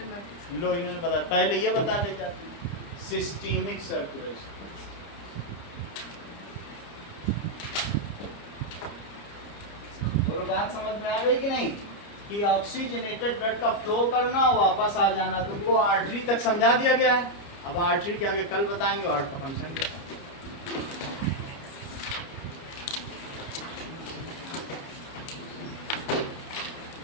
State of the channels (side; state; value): right; late; 29 ms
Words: लो इन्होंने बताया, पहले ये बता ले जाते हैं, सिस्टेमिक सर्कुलेशन। बोलो बात समझ में आ गई कि नहीं? कि ऑक्सीजनेटेड ब्लड का फ्लो करना और वापस आ जाना। तुमको आर्टरी तक समझा दिया गया है। अब आर्टरी के आगे कल बताएंगे और हार्ट का फंक्शन क्या है।